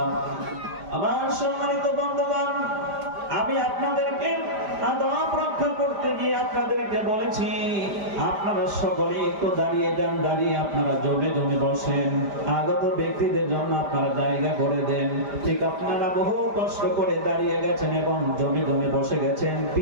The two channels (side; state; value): left; late; 5.0 ms